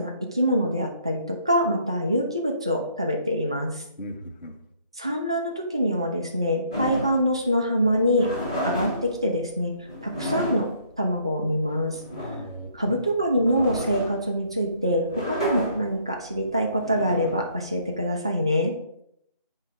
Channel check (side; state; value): both; inverted; correlation -0.63